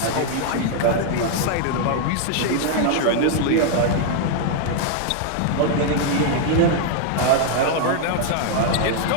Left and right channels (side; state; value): both; different; correlation 0.00